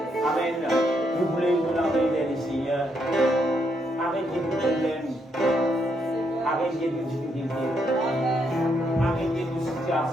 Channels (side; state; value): both; normal; correlation 0.76